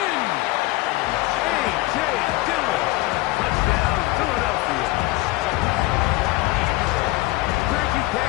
A.J. Dillon. Touchdown, Philadelphia. Greg, you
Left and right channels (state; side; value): quieter; right; 19.9 dB